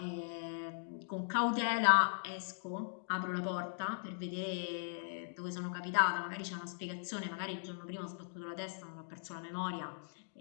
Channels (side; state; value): right; silent; digital silence